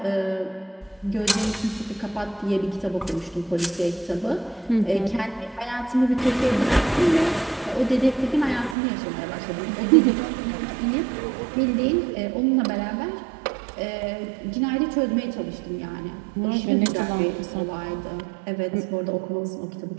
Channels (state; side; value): drops out; left; at 8.8 s